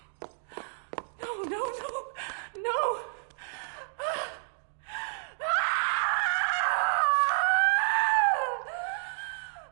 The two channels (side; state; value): left; silent; digital silence